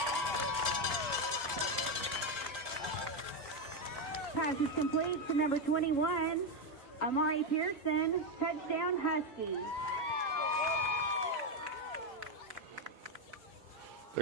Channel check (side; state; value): both; normal; correlation 0.07